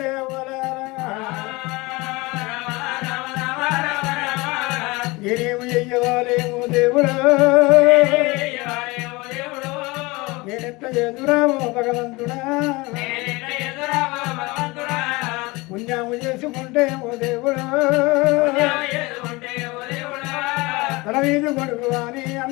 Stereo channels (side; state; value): right; quieter; 23.6 dB